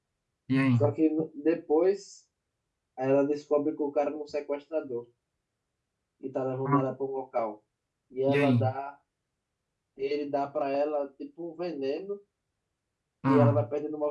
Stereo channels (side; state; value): both; identical; correlation 1.00